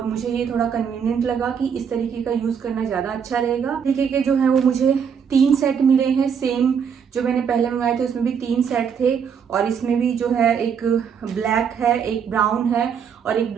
मुझे ये थोड़ा कन्वीनियंट लगा कि इस तरीके का यूज करना ज्यादा अच्छा रहेगा। तरीके के जो है वो मुझे 3 सेट मिले हैं। सेम जो मैंने पहले मंगाए थे उसमें भी 3 सेट थे और इसमें भी जो है एक ब्लैक है, एक ब्राउन है और एक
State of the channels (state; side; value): quieter; left; 7.1 dB